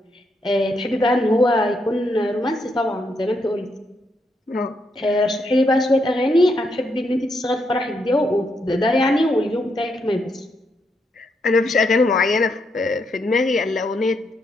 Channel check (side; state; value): both; normal; correlation 0.79